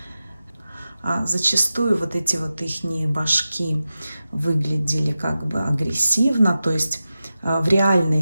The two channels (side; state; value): both; inverted; correlation -0.93